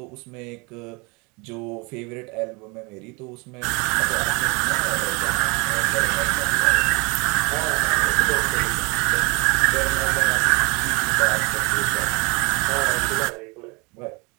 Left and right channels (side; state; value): left; quieter; 28.9 dB